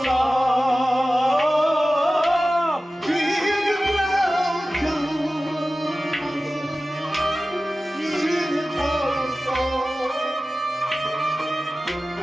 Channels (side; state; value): both; normal; correlation 0.96